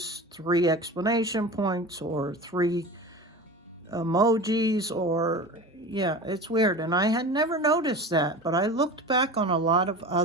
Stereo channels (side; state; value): both; normal; correlation 0.33